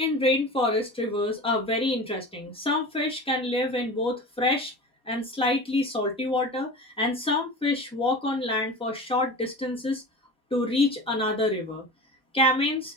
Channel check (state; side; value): normal; both; correlation 0.32